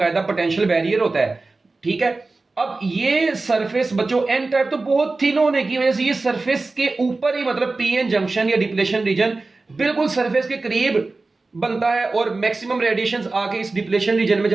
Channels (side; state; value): left; quieter; 3.5 dB